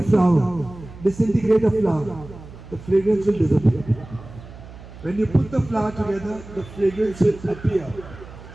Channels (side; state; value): right; noise; hum, 17 dB below the sound